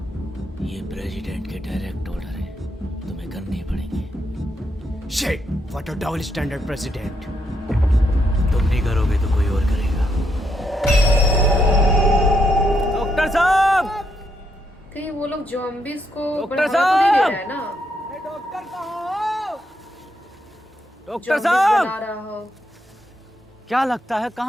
ये प्रेसिडेंट के डायरेक्ट ऑर्डर है, तुम्हें करने ही पड़ेंगे। Shit, what a double standard president. तुम नहीं करोगे तो कोई और करेगा। डॉक्टर साहब, कहीं वो लोग ज़ॉम्बीज़ को डॉक्टर बढ़ावा तो नहीं दे साहब! रहा है ना? डॉक्टर साहब, डॉक्टर ज़ॉम्बीज़ साहब, बना रहा हो। क्या लगता है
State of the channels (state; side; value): normal; both; correlation 0.78